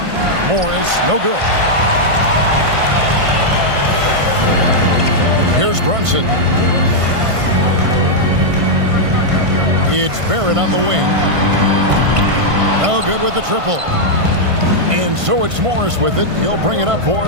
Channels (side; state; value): left; late; 1.5 ms